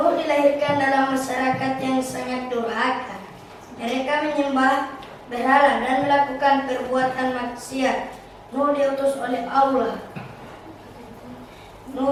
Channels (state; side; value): identical; both; correlation 1.00